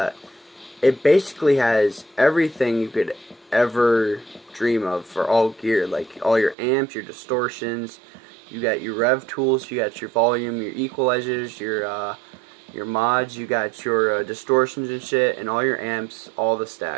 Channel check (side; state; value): left; drops out; at 6.6 s